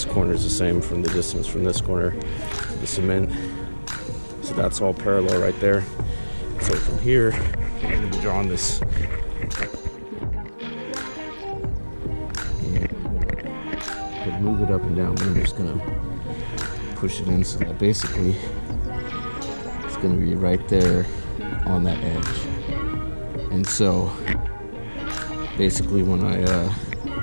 corner is the same from the distance from this corner to the cement. So that's all parallel right there. So from here, I'm going to be drawing this. And move it up and down, but I'm just going to push it in so that basically it's going to be right there on that edge. And so basically when I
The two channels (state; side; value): inverted; both; correlation -1.00